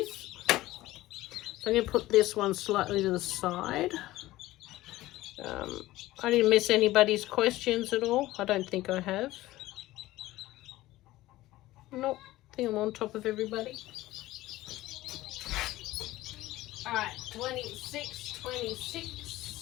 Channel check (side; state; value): right; quieter; 16.9 dB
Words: So I'm going to put this one slightly to the side. I didn't miss anybody's questions at all. I don't think I have. Nope, I think I'm on top of everybody. All right, 26.